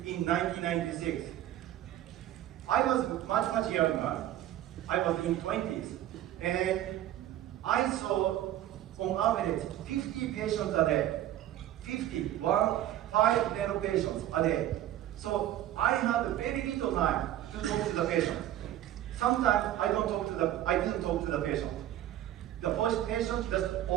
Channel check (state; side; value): quieter; left; 12.9 dB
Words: in 1996. I was much younger. I was in 20s, and I saw on average 50 patients a day. 5 dental patients a day. So I had very little time to talk to the patient. Sometimes I didn't talk to the patient. The first patient just